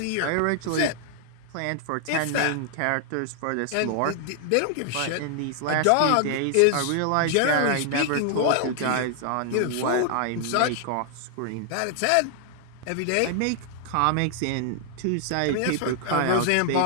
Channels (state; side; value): different; both; correlation 0.00